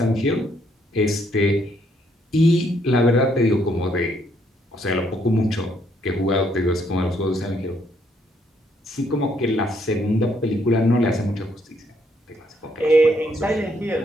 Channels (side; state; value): both; normal; correlation 0.71